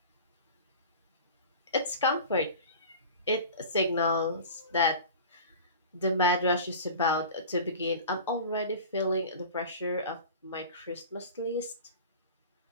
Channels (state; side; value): inverted; both; correlation -0.37